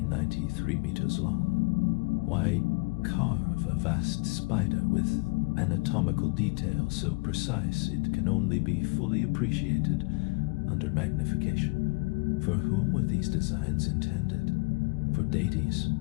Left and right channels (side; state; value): right; quieter; 29.1 dB